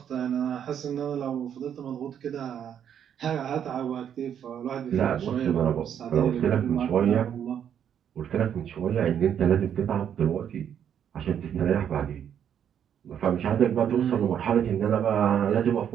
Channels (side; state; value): left; quieter; 8.9 dB